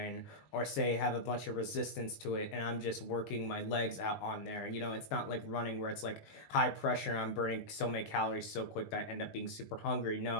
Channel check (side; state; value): right; late; 19 ms